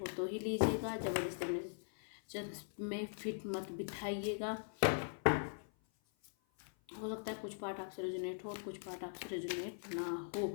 तो ही लीजिएगा, ज़बरदस्ती में फिट मत बिठाइएगा। हो सकता है कुछ पार्ट आपसे रिजोनेट हो और कुछ पार्ट आपसे रिजोनेट ना हो।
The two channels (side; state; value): right; silent; 50 dB below the other